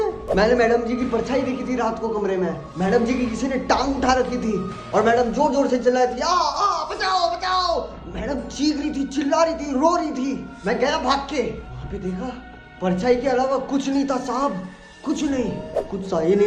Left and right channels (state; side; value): identical; both; correlation 1.00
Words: मैंने मैडम जी की परछाई देखी थी रात को कमरे में। मैडम जी की किसी ने टांग उठा रखी थी और मैडम जोर जोर से चिल्ला रही थी, आ बचाओ बचाओ। मैडम चीख रही थी, चिल्ला रही थी, रो रही थी। मैं गया भाग के, वहां पे देखा परछाई के अलावा कुछ नहीं था साहब, कुछ नहीं। कुछ सही